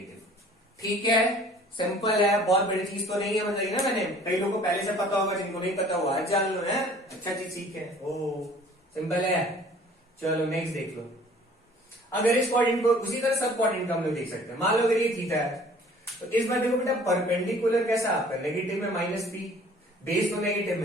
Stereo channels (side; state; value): both; normal; correlation 0.52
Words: ठीक है। सिंपल है, बहुत बड़ी चीज तो नहीं है, बताइए ना, मैंने कई लोगों को पहले से पता होगा, जिनको नहीं पता हुआ आज जान लो, है अच्छा चीज सीखे, ओ सिंपल है। चलो नेक्स्ट देख लो, अगर इस क्वाड्रेंट को उसी तरह सब क्वाड्रेंट का हम लोग देख सकते हैं, मान लो अगर ये थीटा है, तो इस बार देखो बेटा परपेंडिकुलर कैसा आपका, नेगेटिव में माइनस पी, बेस तो नेगेटिव